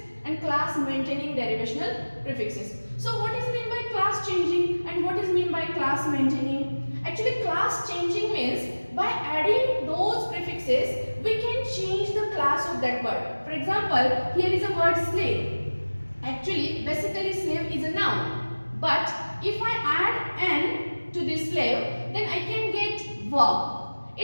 and class maintaining derivational prefixes. So what is meant by class changing and what is meant by class maintaining? Actually class changing means by adding those prefixes we can change the class of that word. For example, here is a word slave. Actually basically slave is a noun, but if I add n to this slave, then I can get verb.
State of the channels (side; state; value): both; inverted; correlation -1.00